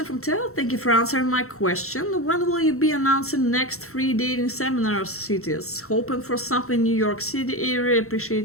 from Tel. Thank you for answering my question. When will you be announcing next free dating seminar cities? Hoping for something New York City area.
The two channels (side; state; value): right; late; 0.63 ms